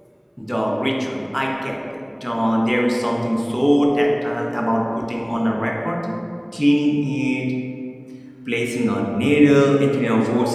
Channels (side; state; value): both; identical; correlation 1.00